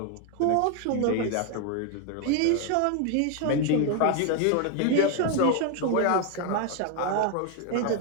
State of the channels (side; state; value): both; different; correlation 0.01